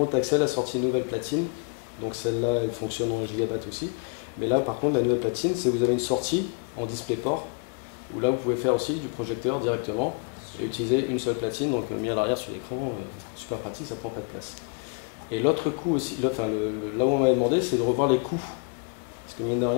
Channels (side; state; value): right; quieter; 37.8 dB